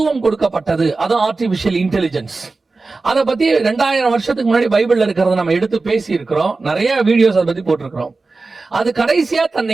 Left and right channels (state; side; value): quieter; left; 3.7 dB